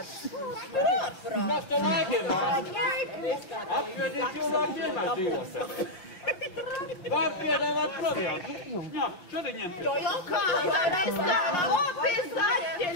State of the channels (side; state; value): right; late; 5.6 ms